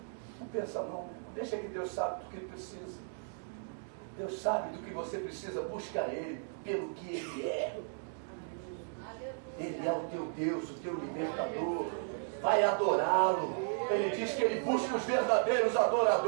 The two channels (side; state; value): left; silent; digital silence